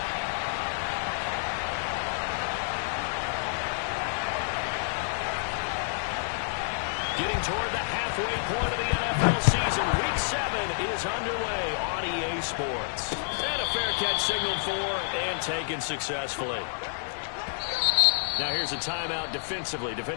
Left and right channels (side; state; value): right; silent; digital silence